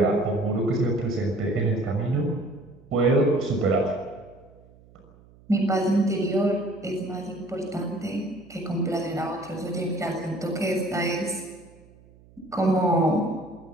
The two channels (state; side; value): noise; right; hum, 26 dB below the sound